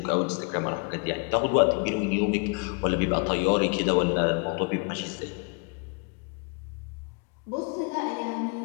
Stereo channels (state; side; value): quieter; right; 33.3 dB